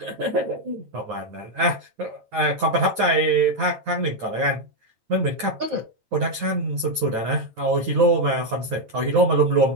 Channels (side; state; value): left; late; 9.1 ms